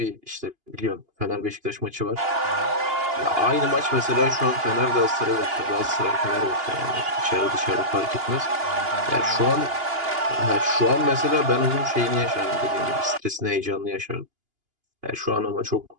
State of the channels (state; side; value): late; left; 2.8 ms